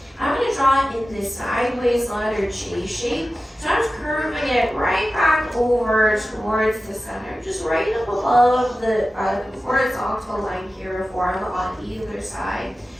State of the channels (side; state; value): both; normal; correlation 0.94